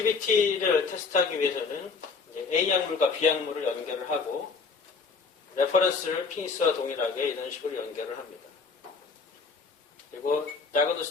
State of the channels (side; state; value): right; quieter; 4.7 dB